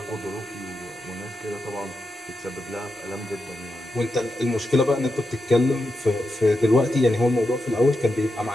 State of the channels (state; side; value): normal; both; correlation 0.87